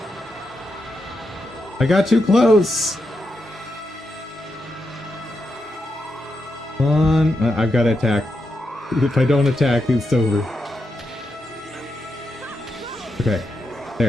I got too close! Come on. I've got to attack. If I don't attack, it's over. Okay.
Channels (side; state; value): both; normal; correlation 0.85